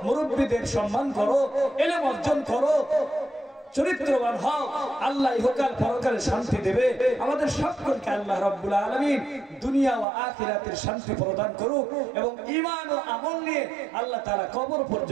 মুরব্বীদের সম্মান করো, ইলম অর্জন করো, চরিত্রবান হও। আল্লাহ ইহকাল পরকালে শান্তি দেবে। আমাদের সকলকে আল্লাহ রাব্বুল আলামিন দুনিয়া ও আখিরাতের শান্তি প্রদান করুক এবং ঈমান ও আমল নিয়ে আল্লাহ তাআলা কবর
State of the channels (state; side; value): drops out; left; at 10.1 s